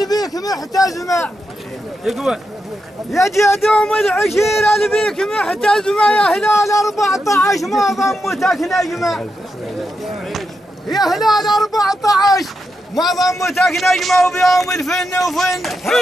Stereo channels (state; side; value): normal; both; correlation 0.86